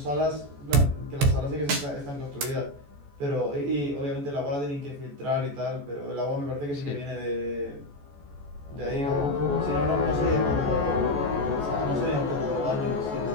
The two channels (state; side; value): late; left; 14 ms